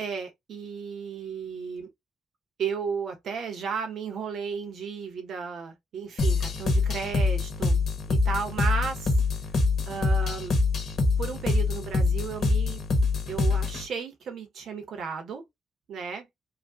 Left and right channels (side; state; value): both; normal; correlation 0.76